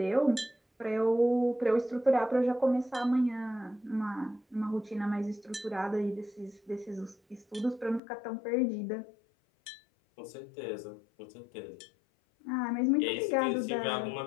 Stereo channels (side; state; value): right; drops out; at 8.0 s